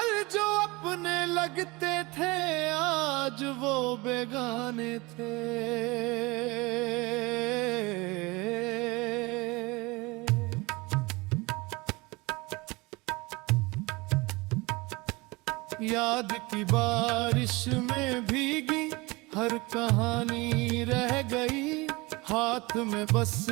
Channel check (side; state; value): left; quieter; 24.0 dB